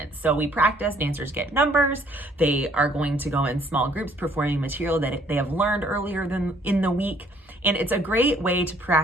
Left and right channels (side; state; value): both; normal; correlation 0.62